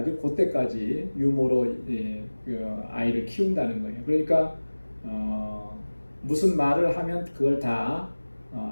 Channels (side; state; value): both; inverted; correlation -1.00